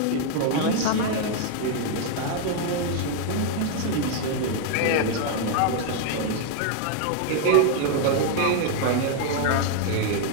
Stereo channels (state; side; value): different; both; correlation 0.00